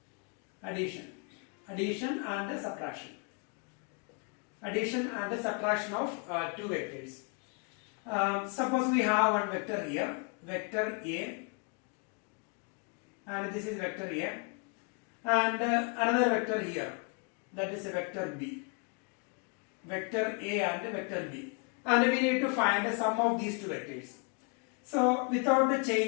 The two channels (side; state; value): right; quieter; 35.7 dB